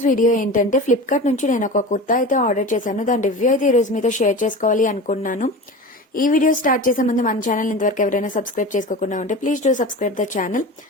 video ఏంటంటే ఫ్లిప్కార్ట్ నుంచి నేను ఒక కుర్తా అయితే ఆర్డర్ చేశాను. దాని రివ్యూ అయితే ఈ రోజు మీతో షేర్ చేసుకోవాలి అనుకున్నాను. ఈ వీడియో స్టార్ట్ చేసే ముందు మన ఛానల్ ఇంతవరకు ఎవరైనా సబ్స్క్రైబ్ చేసుకోకుండా ఉంటే please do subscribe the channel.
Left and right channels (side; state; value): both; normal; correlation 0.31